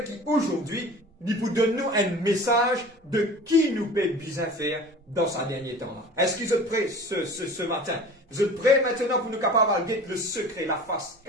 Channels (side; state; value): both; normal; correlation 0.40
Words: qu'aujourd'hui, il vous donne nous un message de qui nous peut bien faire dans sa dernier temps. Est-ce que vous êtes prêts ce matin? Vous êtes prêts maintenant pour nous capables de guetter le secret, la face